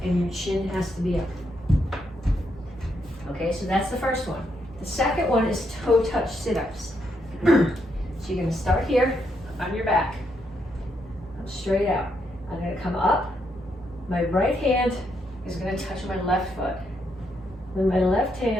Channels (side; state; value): both; normal; correlation 0.78